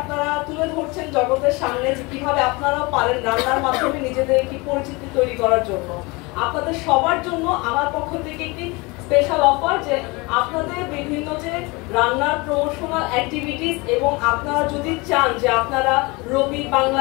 তুলে ধরছেন জগতের সামনে, যে কিভাবে আপনারাও পারেন রান্নার মাধ্যমে নিজেদের একটি পরিচিতি তৈরি করার জন্য। আপনাদের সবার জন্য আমার পক্ষ থেকে একটি স্পেশাল অফার, যে আপনাদের বিভিন্ন যে রান্নার প্রমোশনাল অ্যাক্টিভিটিস এবং আপনারা যদি চান যে আপনারা রবি,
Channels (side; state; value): right; quieter; 25.7 dB